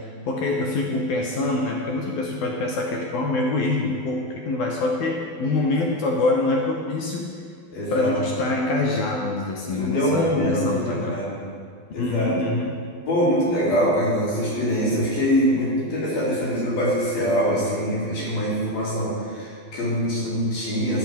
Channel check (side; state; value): right; late; 12 ms